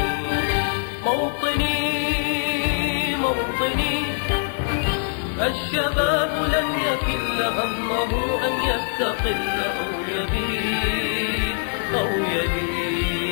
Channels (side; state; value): right; silent; digital silence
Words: موطني موطني، الشباب لن يكل همه أن يستقل أو يبيد أو